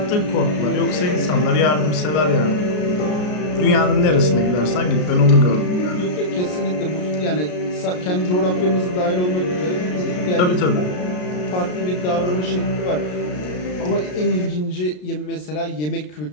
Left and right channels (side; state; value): right; late; 33 ms